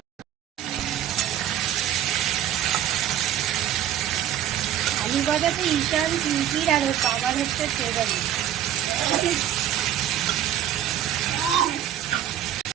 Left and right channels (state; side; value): quieter; left; 11.0 dB